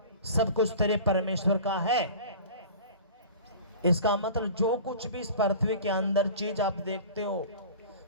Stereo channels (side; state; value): both; inverted; correlation -0.40